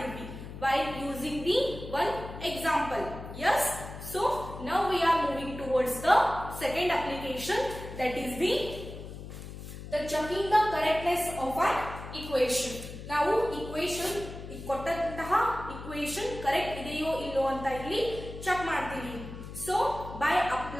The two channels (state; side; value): noise; left; hum, 11 dB below the sound